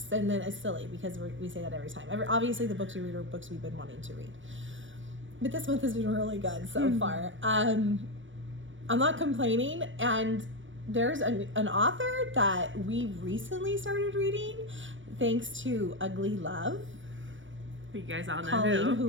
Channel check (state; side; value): late; left; 0.56 ms